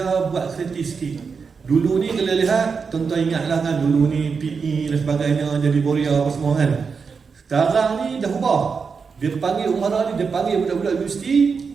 buat kreatif sikit. Dulu ni kalau lihat, tuan-tuan ingatlah kan, dulu ni PE dan sebagainya jadi Borea apa semua kan. Sekarang ni dah ubah. Dia panggil Umara ni, dia panggil budak-budak universiti,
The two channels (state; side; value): quieter; left; 5.4 dB